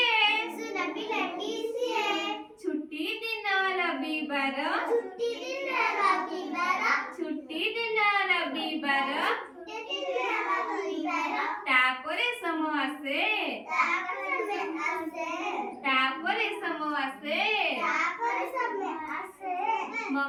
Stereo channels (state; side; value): identical; both; correlation 1.00